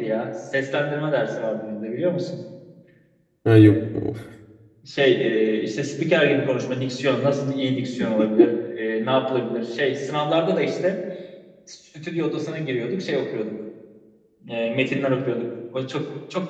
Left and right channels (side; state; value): both; identical; correlation 1.00